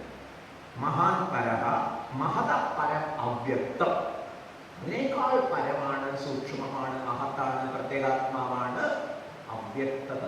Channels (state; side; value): identical; both; correlation 1.00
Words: മഹാൻ പരഹ മഹത പരം അവ്യക്തം. അതിനേക്കാൾ പരമാണ്, സൂക്ഷ്മമാണ്, മഹത്താണ്, പ്രത്യേകാത്മാവാണ് അവ്യക്ത